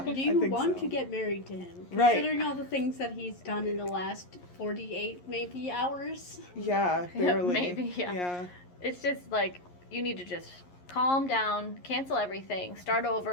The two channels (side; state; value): right; late; 11 ms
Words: Do I you think want so. to get married to him? Right. Considering all the things that he's done in the last 48 maybe hours. Yeah, barely. Maybe, yeah. Yeah. It's just like you need to just calm down, cancel everything, start